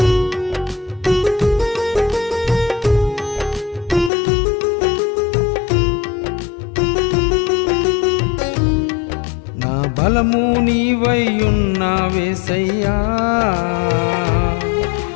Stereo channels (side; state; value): right; drops out; at 4.1 s